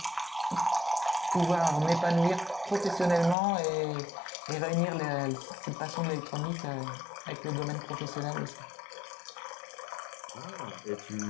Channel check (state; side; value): drops out; right; at 3.4 s